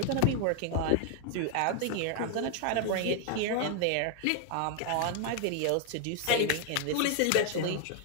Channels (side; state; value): both; different; correlation 0.00